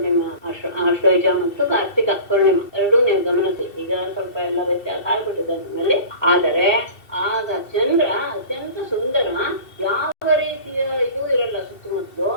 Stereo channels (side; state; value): right; late; 2.7 ms